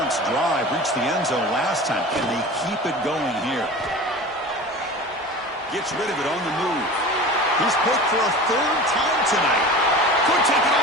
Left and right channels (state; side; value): normal; both; correlation 0.35